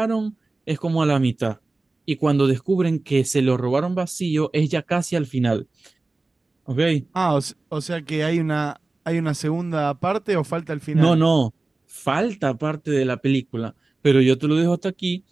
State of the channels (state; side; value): quieter; left; 3.2 dB